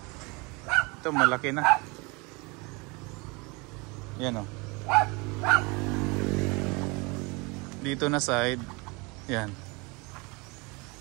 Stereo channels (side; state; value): left; quieter; 27.3 dB